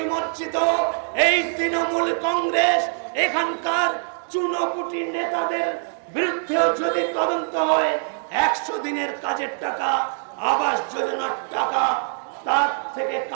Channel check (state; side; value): silent; left; 60 dB below the other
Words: এই তৃণমূল কংগ্রেস এখানকার চুনোপুটি নেতাদের বিরুদ্ধেও যদি তদন্ত হয়, 100 দিনের কাজের টাকা, আবাস যোজনার টাকা তার থেকে